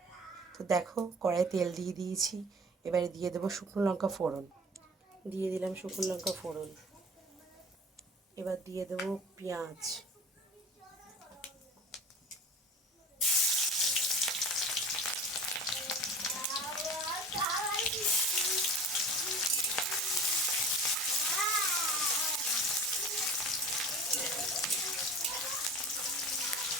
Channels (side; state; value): both; normal; correlation 0.40